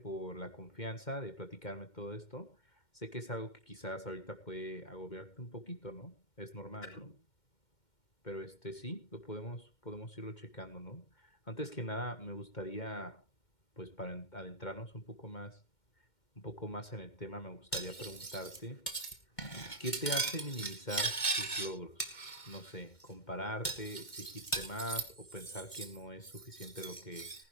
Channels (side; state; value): right; late; 2.1 ms